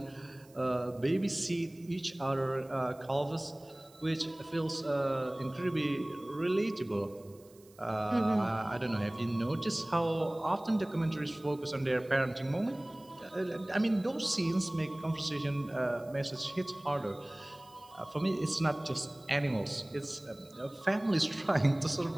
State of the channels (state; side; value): noise; right; hiss, 27 dB below the sound